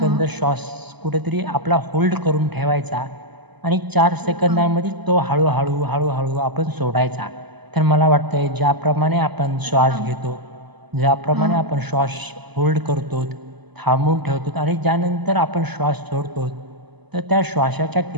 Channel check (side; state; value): left; late; 0.99 ms